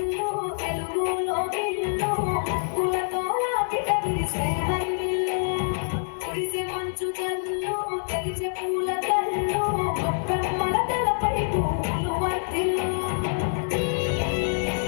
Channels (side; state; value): right; silent; 61 dB below the other